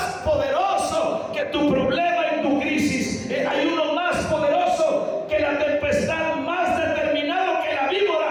poderoso que tu problema y tu crisis. Hay uno más poderoso que la tempestad, más determinado que la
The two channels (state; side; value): identical; both; correlation 1.00